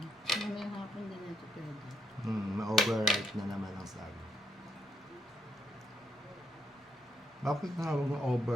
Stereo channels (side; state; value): both; normal; correlation 0.77